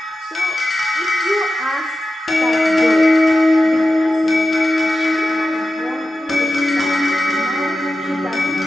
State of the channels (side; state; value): both; normal; correlation 0.93